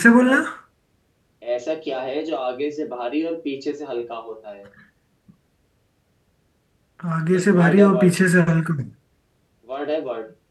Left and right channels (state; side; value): identical; both; correlation 1.00